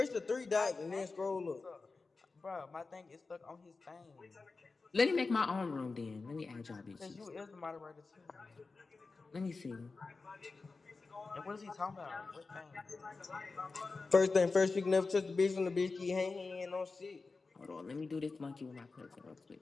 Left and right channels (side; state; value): right; quieter; 4.0 dB